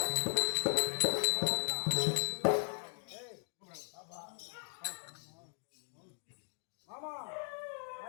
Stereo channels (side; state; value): right; silent; 53 dB below the other